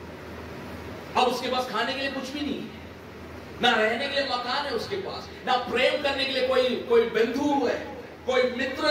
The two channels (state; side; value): identical; both; correlation 1.00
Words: अब उसके पास खाने के लिए कुछ भी नहीं है, ना रहने के लिए मकान है उसके पास, ना प्रेम करने के लिए कोई बंधु है, कोई मित्र